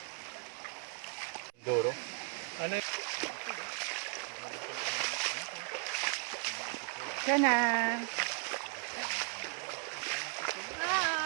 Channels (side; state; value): left; quieter; 39.7 dB